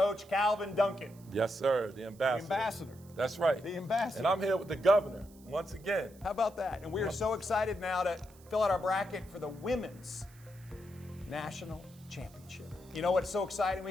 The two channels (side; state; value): right; noise; hiss, 26 dB below the sound